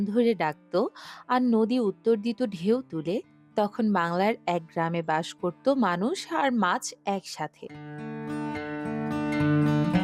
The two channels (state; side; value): identical; both; correlation 1.00